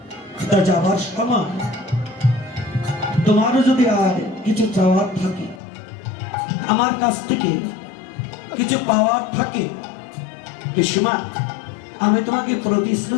তা যাবার সময় তোমারও যদি আর কিছু চাওয়ার থাকে, আমার কাছ থেকে কিছু পাওয়ার থাকে, পিসিমা আমি তোমাকে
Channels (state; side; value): drops out; right; at 5.6 s